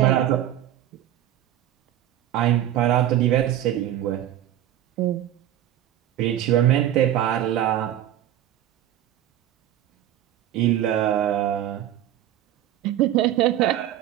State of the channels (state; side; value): quieter; left; 12.2 dB